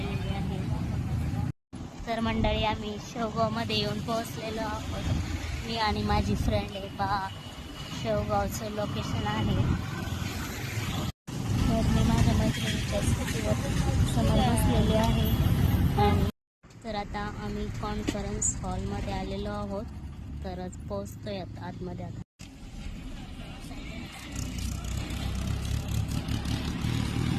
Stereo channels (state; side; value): identical; both; correlation 1.00